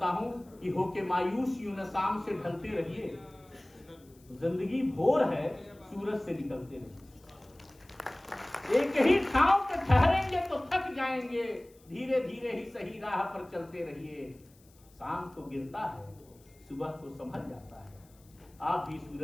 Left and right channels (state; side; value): noise; left; hiss, 29 dB below the sound